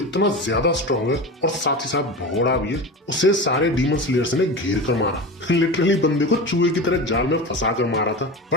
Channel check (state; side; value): normal; both; correlation 0.28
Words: ज्यादा स्ट्रॉन्ग है और साथ ही साथ भगोड़ा भी है, उसे सारे डीमन स्लेयर्स ने घेर कर मारा। लिटरली बंदे को चूहे की तरह जाल में फंसा कर मारा था।